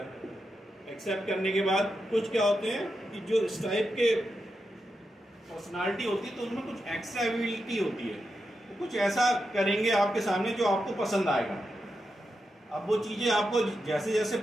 एक्सेप्ट करने के बाद कुछ क्या होते हैं कि जो इस टाइप के पर्सनालिटी होती है तो उनमें कुछ एक्स्ट्रा एबिलिटी होती है, वो कुछ ऐसा करेंगे आपके सामने जो आपको पसंद आएगा। अब वो चीज़ें आपको जैसे जैसे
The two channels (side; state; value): both; normal; correlation 0.87